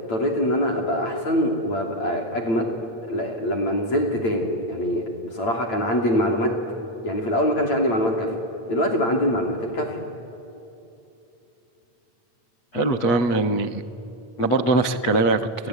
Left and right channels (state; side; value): late; right; 8.8 ms